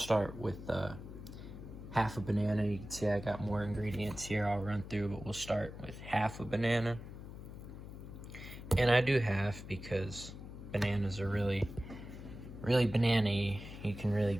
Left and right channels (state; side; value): noise; left; hum, 12 dB below the sound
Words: with half a banana. You can see I got more ingredients here I'll run through, but we'll start with half a banana. And I do half because bananas are really banana-y. You can really